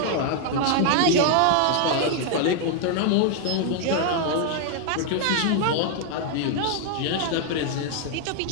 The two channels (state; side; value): different; both; correlation 0.00